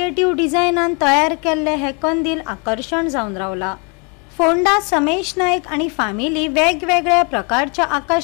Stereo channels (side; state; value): right; quieter; 33.9 dB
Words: डिझायनान तयार केल्ले हे कंदील आकर्षण जावन रावला। फोंडा समेश नायक आणि फॅमिली वेगवेगळ्या प्रकारच्या